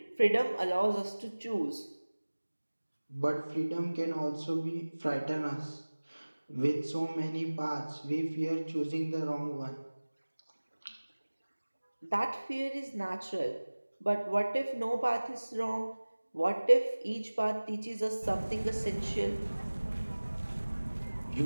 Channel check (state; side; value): inverted; both; correlation -1.00